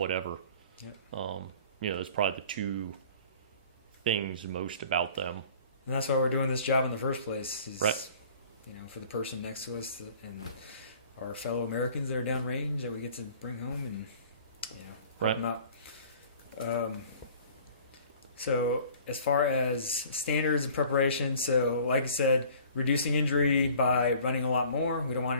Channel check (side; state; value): both; inverted; correlation -0.49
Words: Yep. That's probably the two things most about them. And that's why we're doing this job in the first place. Is, right. For the person next to us and our fellow Americans that are downrange that we get to bring home and, help them out. So as far as standards and preparation, so like I said, reducing injury by running a lot more. We don't want